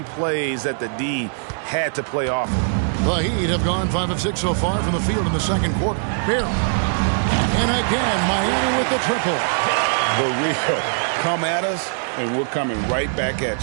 plays that the D had to play off him. The Heat have gone 5 of 6 so far from the field in the second quarter. Barry. And again, Miami with the triple. The real. Come at us, and we're coming right back at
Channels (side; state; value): left; silent; digital silence